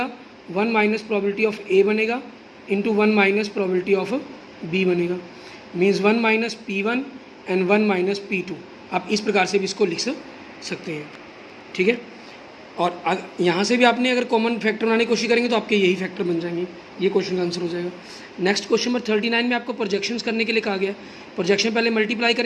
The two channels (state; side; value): identical; both; correlation 1.00